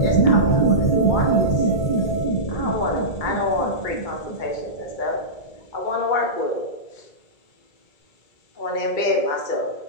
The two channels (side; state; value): right; late; 2.3 ms